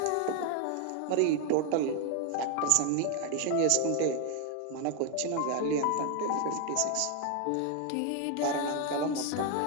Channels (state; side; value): different; both; correlation 0.01